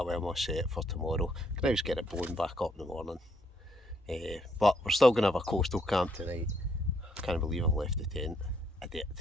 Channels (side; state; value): both; normal; correlation 0.71